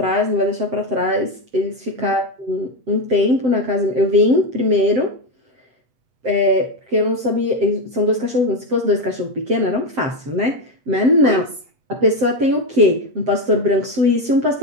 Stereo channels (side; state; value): left; late; 7.7 ms